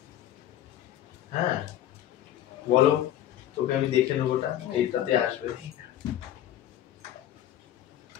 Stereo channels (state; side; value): quieter; right; 11.9 dB